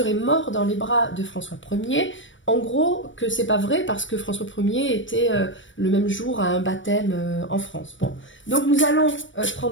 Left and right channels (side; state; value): right; late; 0.56 ms